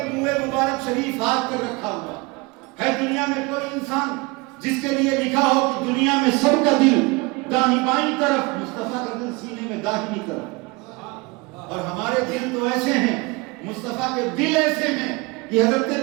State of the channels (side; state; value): left; quieter; 25.6 dB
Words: منہ مبارک شریف ہاتھ پر رکھا ہوا ہے۔ دنیا میں کوئی انسان جس کے لیے لکھا ہو کہ دنیا میں سب کا دل داہنی بائیں طرف، مصطفیٰ کا دل سینے میں داہنی طرف، اور ہمارے دل تو ایسے ہیں، مصطفیٰ کے دل ایسے ہیں کہ حضرت